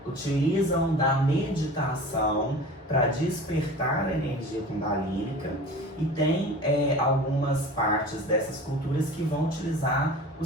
utilizam da meditação para despertar a energia kundalínica, e tem algumas partes dessas culturas que vão utilizar o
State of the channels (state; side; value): normal; both; correlation 0.38